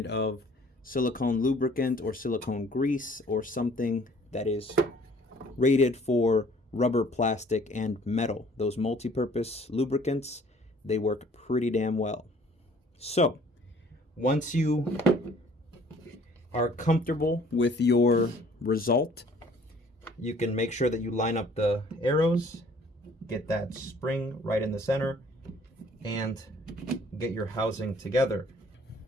of silicone lubricant or silicone grease, or something that is rated for rubber, plastic, and metal. Those multi-purpose lubricants, they work pretty damn well. So once you are comfortable with your result, you can make sure that you line up the arrows, get that spring right in the center, and get your housing together.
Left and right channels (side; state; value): both; normal; correlation 0.56